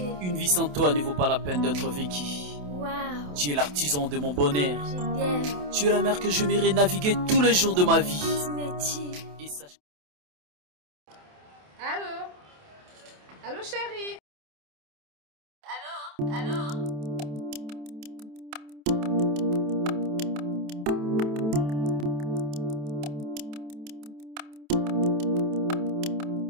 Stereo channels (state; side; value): late; left; 27 ms